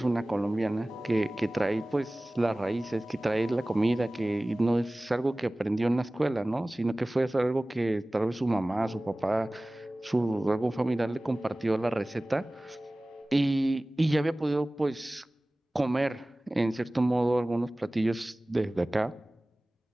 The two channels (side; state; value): both; normal; correlation 0.98